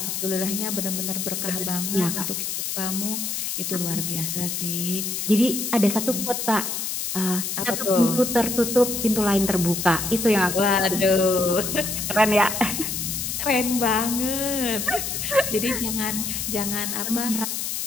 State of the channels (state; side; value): noise; left; hiss, 3 dB below the sound